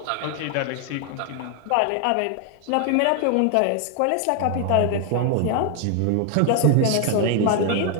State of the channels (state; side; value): different; both; correlation 0.00